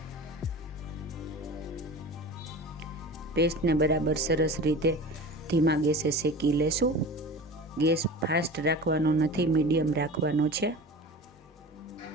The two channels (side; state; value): both; normal; correlation 0.35